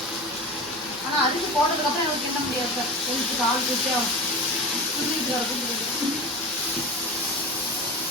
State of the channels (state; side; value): normal; both; correlation 0.29